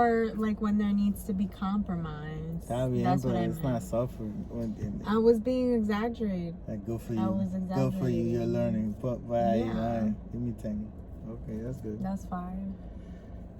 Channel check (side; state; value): both; identical; correlation 1.00